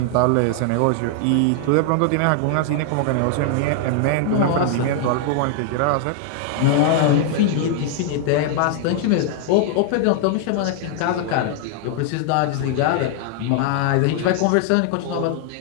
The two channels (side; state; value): both; different; correlation 0.00